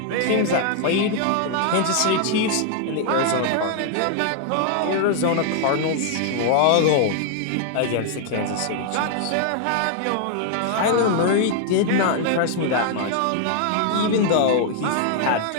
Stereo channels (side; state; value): both; different; correlation 0.00